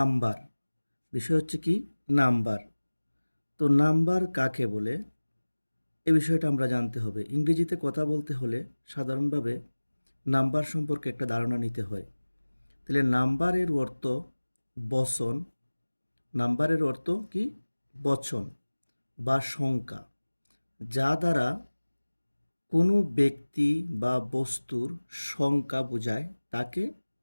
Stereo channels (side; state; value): both; inverted; correlation -1.00